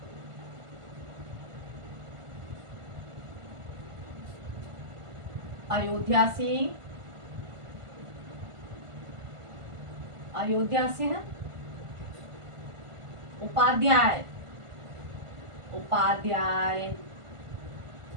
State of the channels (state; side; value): late; left; 1.5 ms